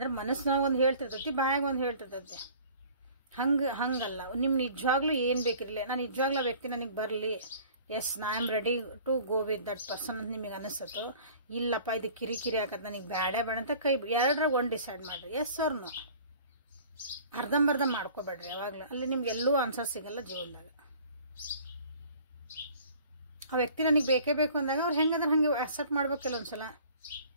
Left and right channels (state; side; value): inverted; both; correlation -0.49